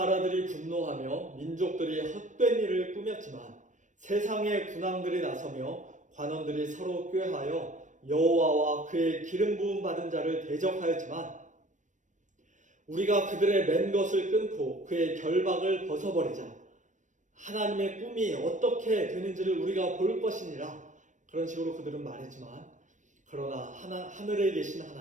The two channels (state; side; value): late; left; 0.36 ms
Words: 분노하며 민족들이 헛된 일을 꾸몄지만 세상의 군왕들이 나서며 관원들이 서로 꾀하여 여호와와 그의 기름 부음 받은 자를 대적하였지만 우리가 그들의 맨 것을 끊고 그의 결박을 벗어버리자 하나님의 꿈이 어떻게 되는지를 우리가 볼 것이니라. 그런 식으로 그들은 말했지만 그러나 하늘에 계신